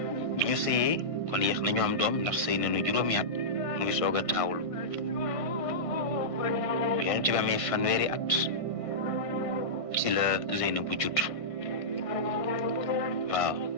ñu sëyee kon yéex nañu am doom ndax sëy nañu juróomi at mu ngi soog a taawlu yonent bi amee fanweeri at ci la Zeynabu judd waaw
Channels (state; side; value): late; right; 1.6 ms